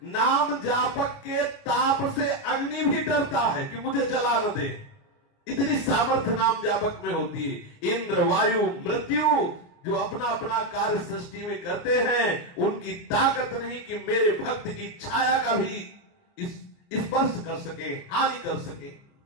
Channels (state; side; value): late; right; 28 ms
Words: नाम जापक के ताप से अग्नि भी डरता है कि मुझे जला न दे। इतनी सामर्थ्य नाम जापक में होती है। इंद्र, वायु, मृत्यु जो अपना अपना कार्य सृष्टि में करते हैं, उनकी ताकत नहीं कि मेरे भक्त की छाया का भी स्पर्श कर सके, हानि कर सके।